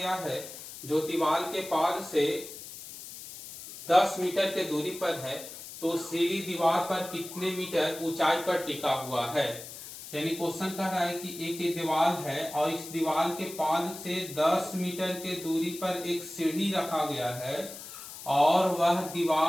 है जो दीवार के पाद से 10 मीटर के दूरी पर है, तो सीढ़ी दीवार पर कितने मीटर ऊंचाई पर टिका हुआ है। यानी क्वेश्चन कह रहा है कि एक दीवार है और इस दीवार के पाद से 10 मीटर के दूरी पर एक सीढ़ी रखा गया है और वह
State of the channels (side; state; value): left; noise; hiss, 13 dB below the sound